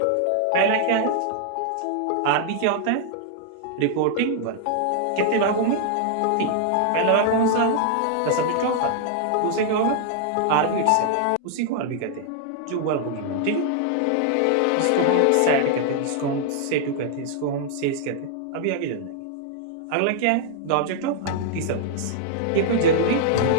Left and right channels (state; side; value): different; both; correlation -0.01